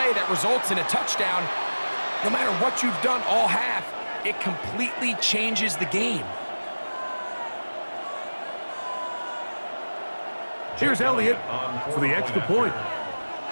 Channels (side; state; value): both; inverted; correlation -1.00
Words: that results in a touchdown. No matter what you've done all half, it completely changes the game. Here's Elliott for the extra point.